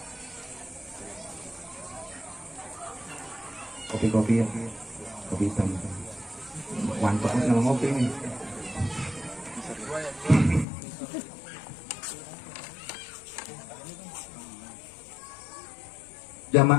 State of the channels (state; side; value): drops out; right; at 10.7 s